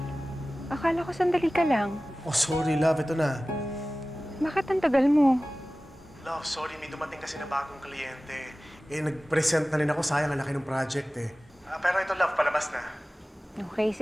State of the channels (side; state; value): both; normal; correlation 0.97